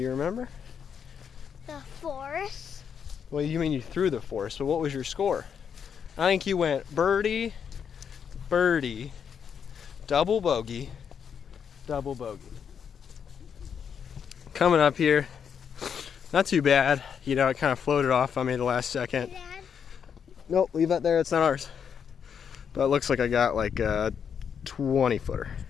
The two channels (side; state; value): right; quieter; 7.4 dB